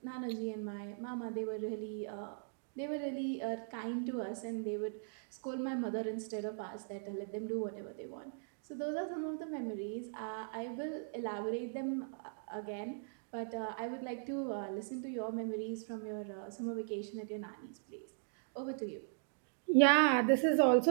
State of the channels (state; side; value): silent; left; digital silence